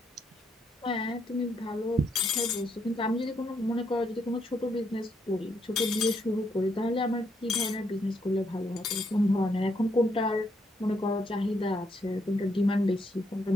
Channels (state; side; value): normal; both; correlation 0.76